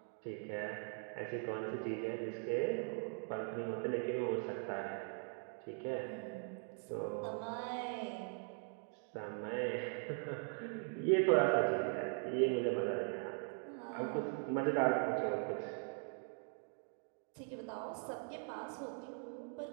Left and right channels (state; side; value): silent; left; 50 dB below the other